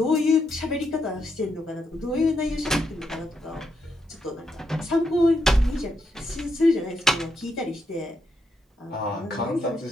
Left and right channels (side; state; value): both; normal; correlation 0.80